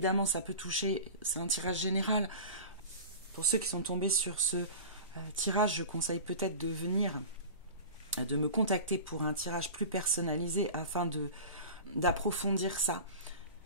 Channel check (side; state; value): both; inverted; correlation -0.35